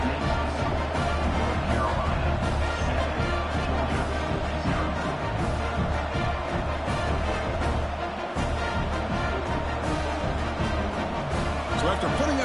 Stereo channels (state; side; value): identical; both; correlation 1.00